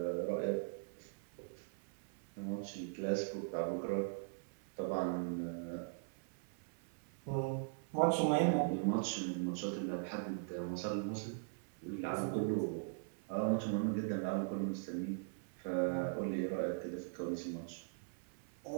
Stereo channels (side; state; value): left; silent; 51 dB below the other